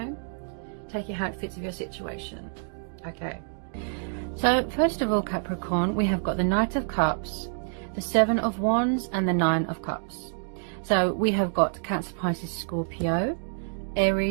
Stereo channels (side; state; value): left; silent; digital silence